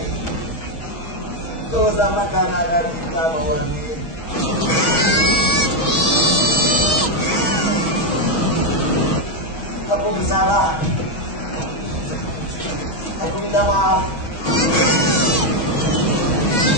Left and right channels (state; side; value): late; right; 6.3 ms